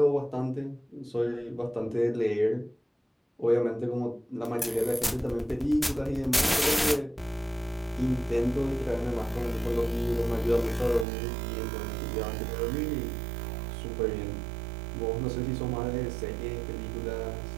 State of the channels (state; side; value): drops out; left; at 11.1 s